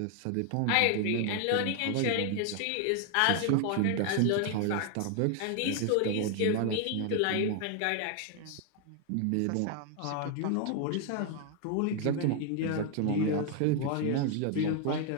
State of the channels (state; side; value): different; both; correlation 0.01